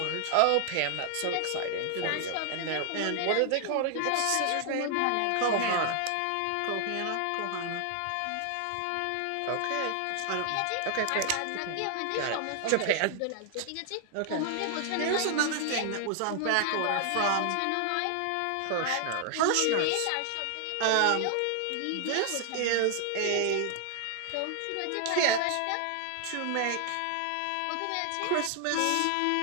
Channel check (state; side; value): different; both; correlation 0.00